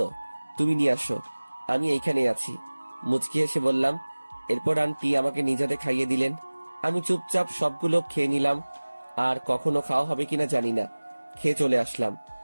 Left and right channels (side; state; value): both; inverted; correlation -1.00